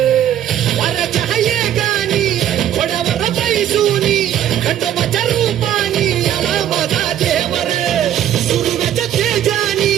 वाऱ्याच्या गाणी घोड्यावर बैसूनी खंडोबाच्या रूपानी आला माझा देवर सुरव्याच्या तेजानी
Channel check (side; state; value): left; quieter; 11.0 dB